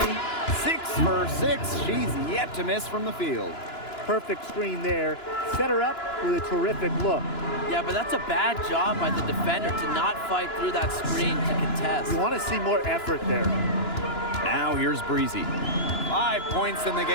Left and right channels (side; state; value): right; late; 2.9 ms